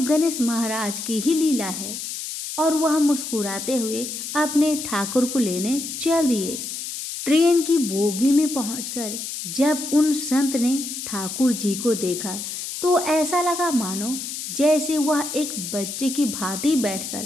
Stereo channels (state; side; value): noise; left; hiss, 6 dB below the sound